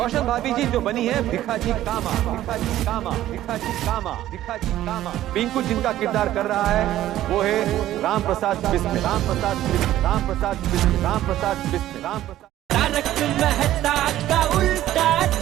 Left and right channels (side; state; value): left; quieter; 13.6 dB